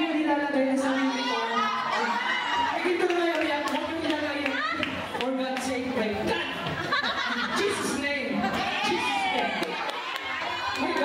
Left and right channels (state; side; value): identical; both; correlation 1.00